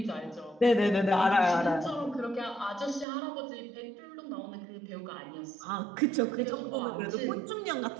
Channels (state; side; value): drops out; left; at 3.1 s